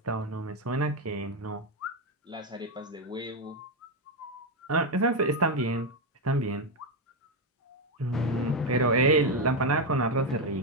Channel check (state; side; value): normal; both; correlation 0.06